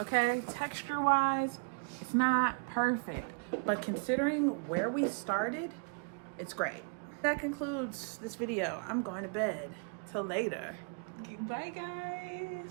Texture wise, it's not perfect. But considering where we started, it's great. That concludes this video. I'm going to bed. Till later. Bye guys.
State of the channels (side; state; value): left; quieter; 37.8 dB